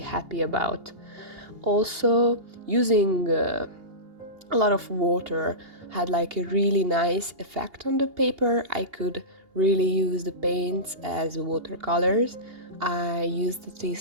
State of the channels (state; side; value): late; left; 2.8 ms